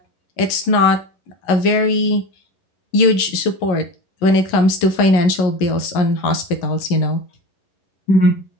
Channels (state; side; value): late; right; 11 ms